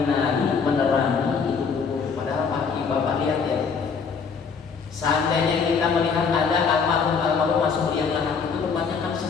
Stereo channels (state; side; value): quieter; right; 5.7 dB